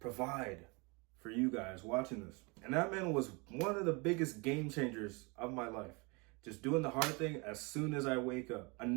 for you guys watching this. And that, man, was one of the biggest game changers of my life. Just doing the hard thing as soon as I wake up.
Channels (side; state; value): left; quieter; 29.6 dB